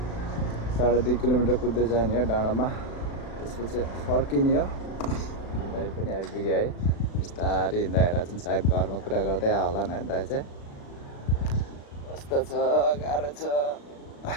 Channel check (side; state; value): right; late; 36 ms